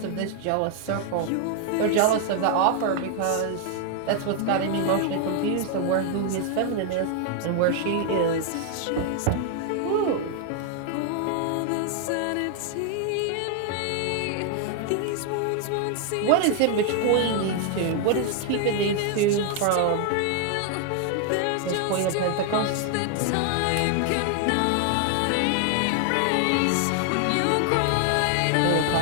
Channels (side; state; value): both; different; correlation 0.00